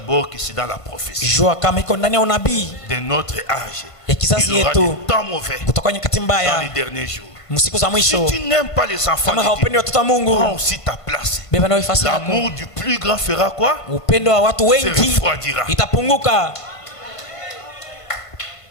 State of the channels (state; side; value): late; right; 1.5 ms